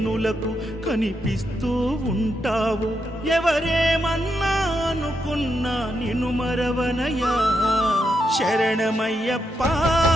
కనిపిస్తూ ఉంటావు. ఎవరేమన్నా అనుకున్నా నిన్ను మరవనయ్యా. శరణమయ్యప్ప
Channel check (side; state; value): both; normal; correlation 0.82